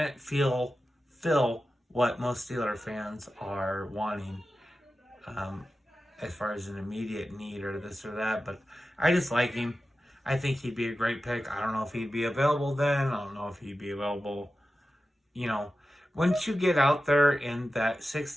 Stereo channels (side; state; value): both; normal; correlation 0.93